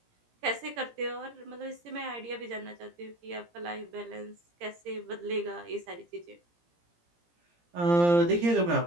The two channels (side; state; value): left; late; 17 ms